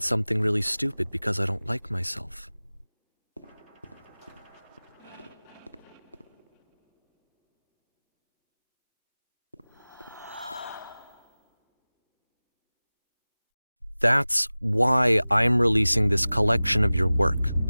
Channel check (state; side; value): inverted; both; correlation -0.98